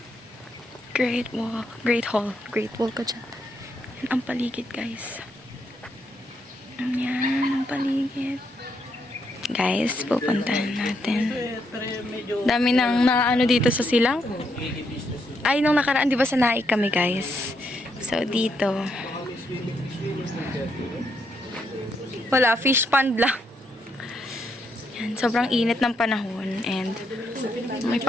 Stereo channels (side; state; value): both; normal; correlation 0.77